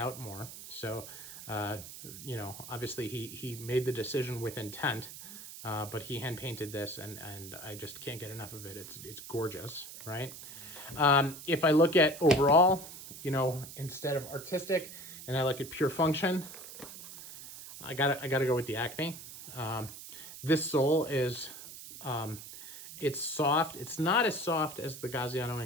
more. So, obviously he made the decision with intent, but he hand painted this, and I just can't get enough of it. It's gorgeous, right? If I look at overall, instead of artistic, and I look at pure function, I gotta go with the Acme. This sole is, it's soft. It's not as soft as the Gaziano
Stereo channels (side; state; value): right; noise; hiss, 13 dB below the sound